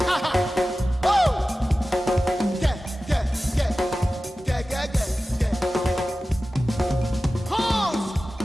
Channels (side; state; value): both; normal; correlation 0.95